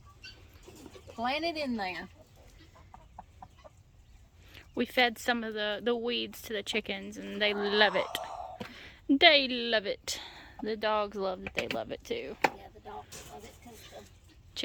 plant it in there. We fed some of the weeds to the chickens, and they love it. They love it. The dogs love it. They love it too. Yeah, the dogs love it because the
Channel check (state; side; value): identical; both; correlation 1.00